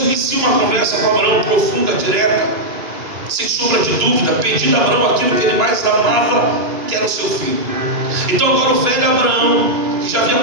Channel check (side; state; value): left; late; 2.9 ms